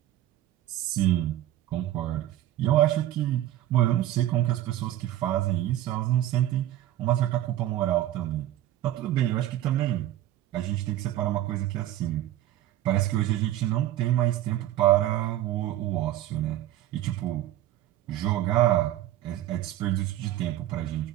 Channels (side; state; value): left; quieter; 13.6 dB